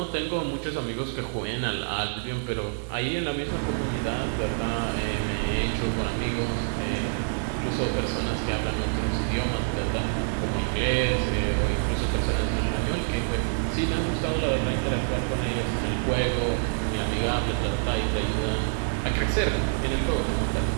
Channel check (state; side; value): silent; left; digital silence